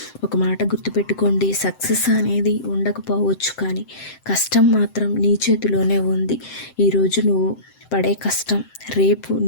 ఒక మాట గుర్తుపెట్టుకోండి, సక్సెస్ అనేది ఉండకపోవచ్చు, కానీ కష్టం మాత్రం నీ చేతిలోనే ఉంది. ఈరోజు నువ్వు పడే కష్టం రేపు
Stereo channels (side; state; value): right; late; 7.7 ms